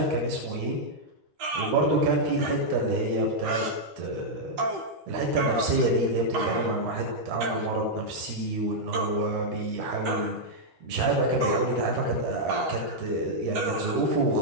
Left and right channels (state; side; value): late; left; 13 ms